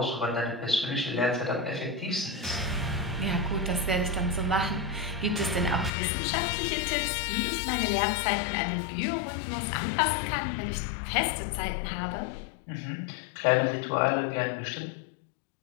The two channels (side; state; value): right; drops out; at 5.9 s